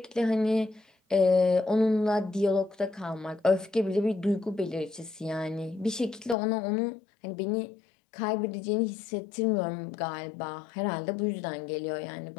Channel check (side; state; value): right; drops out; at 6.4 s